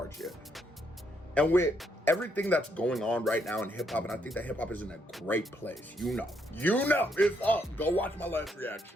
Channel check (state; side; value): normal; both; correlation 0.75